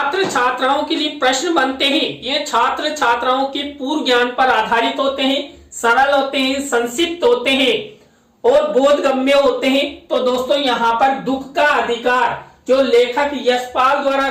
छात्राओं के लिए प्रश्न बनते हैं ये छात्र छात्राओं के पूर्व ज्ञान पर आधारित होते हैं, सरल होते हैं, संक्षिप्त होते हैं और बोधगम्य होते हैं। तो दोस्तों यहाँ पर दुख का अधिकार जो लेखक यशपाल द्वारा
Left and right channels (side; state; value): both; identical; correlation 1.00